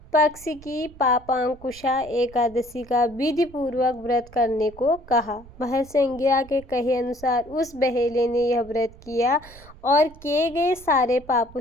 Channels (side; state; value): right; noise; rumble, 21 dB below the sound